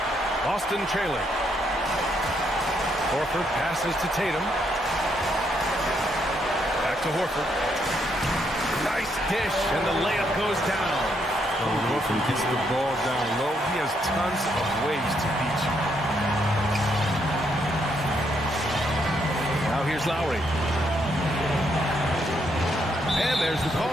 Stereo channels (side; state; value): both; normal; correlation 0.75